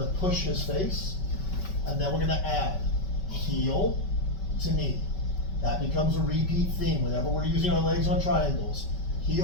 push his face, and then we're gonna add heel to knee. That becomes a repeat theme whenever we're using our legs on triangles.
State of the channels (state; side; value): late; right; 5.2 ms